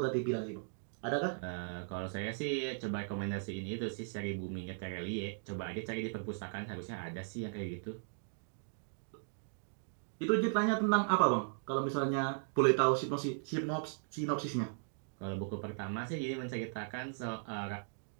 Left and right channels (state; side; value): silent; left; digital silence